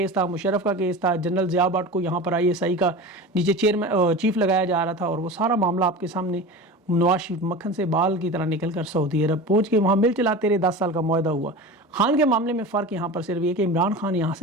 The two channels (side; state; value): both; normal; correlation 0.31